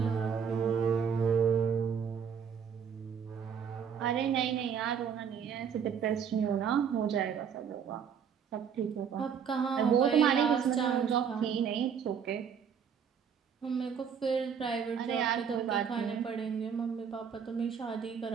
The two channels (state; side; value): quieter; left; 7.2 dB